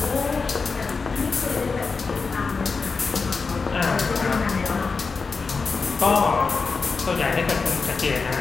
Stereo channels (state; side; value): quieter; right; 4.6 dB